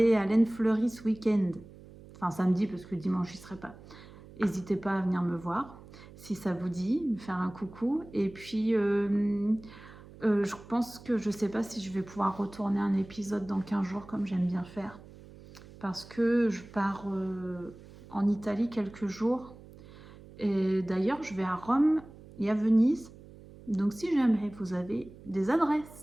à Laine Fleurie ce week-end, enfin samedi parce que dimanche, je n'y serai pas, n'hésitez pas à venir me voir. Si ça vous dit, me faire un coucou. Et puis, je pense que je ne sais pas si je vais pouvoir retourner un épisode dans 15 jours comme j'aime bien faire. Parce que je pars en Italie quelques jours. Et d'ailleurs, je vais à Rome et à Venise. Donc si jamais vous avez des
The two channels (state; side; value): noise; right; hum, 19 dB below the sound